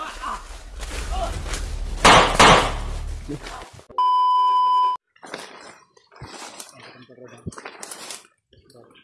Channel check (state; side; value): identical; both; correlation 1.00